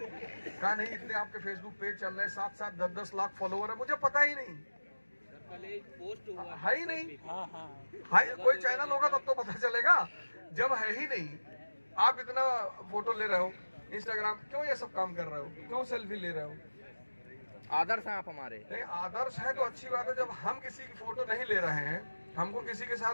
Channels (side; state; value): both; inverted; correlation -1.00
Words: नहीं, इतने आपके फेसबुक पेज चल रहे हैं, 7-7 10-10 लाख फॉलोवर है, मुझे पता ही नहीं है ही नहीं। कोई चैनल होगा तब तो पता चलेगा, जब है ही नहीं। आप इतना फोटो ले रहे हो इंस्टाग्राम, क्यों ये सब काम कर रहे हो, क्यों सेल्फी ले रहे हो? आदर्श हैं आप हमारे। नहीं, आदर्श है तो अच्छी बात है। जब हम किसी की फोटो नहीं ले रहे हैं, हमको किसी के साथ